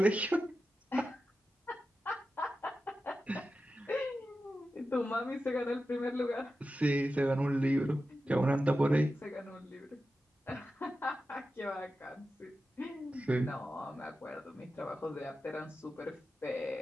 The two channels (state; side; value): normal; both; correlation 0.92